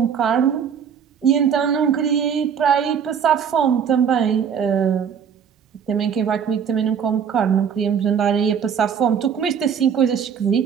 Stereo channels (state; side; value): quieter; left; 7.5 dB